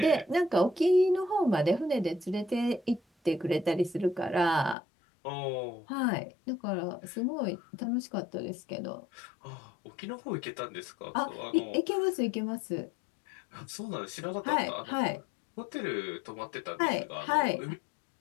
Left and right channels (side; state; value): right; drops out; at 4.8 s